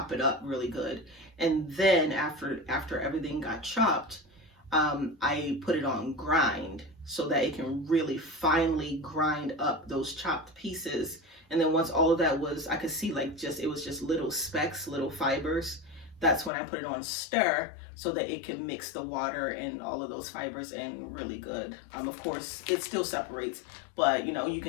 it up really good. And then after everything got chopped, I put it on grind so that it can really finely grind up those chopped pieces. And then once all of that was, I could see like it was just little specks, little fibers. That's when I put it on stir so that it can mix the water and all of those fibers in really good. Of course, it still separates, but you know, you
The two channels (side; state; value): right; drops out; at 16.5 s